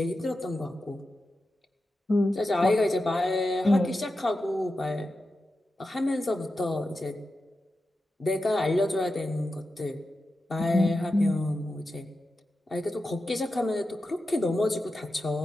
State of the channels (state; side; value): normal; both; correlation 0.91